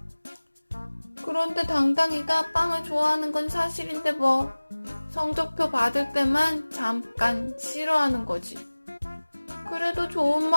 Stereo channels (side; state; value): both; inverted; correlation -1.00